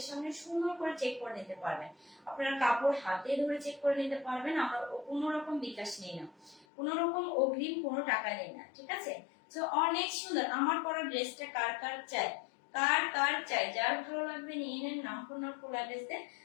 সামনে সুন্দর করে চেক করে নিতে পারবেন, আপনারা কাপড় হাতে ধরে চেক করে নিতে পারবেন। আমরা কোনো রকম বিকাশ নেই না, কোনো রকম অগ্রিম কোনো টাকা নেই না, ঠিক আছে। তো অনেক সুন্দর আমার পরা ড্রেসটা কার কার চাই, কার কার চাই, যার ভালো লাগবে নিয়ে নেন। নাম, ফোন নম্বর, ফুল অ্যাড্রেস দিয়ে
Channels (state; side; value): drops out; right; at 6.7 s